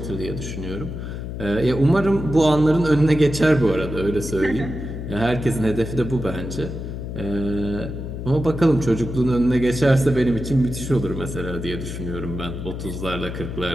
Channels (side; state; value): left; noise; hum, 7 dB below the sound